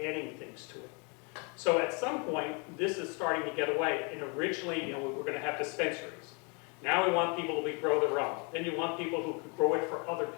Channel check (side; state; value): right; quieter; 33.7 dB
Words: things to it. So at some point, this is starting to get away. And originally, you know, we were going to have dispensaries. Now we want people to grow their own. Then you want people who could grow it for other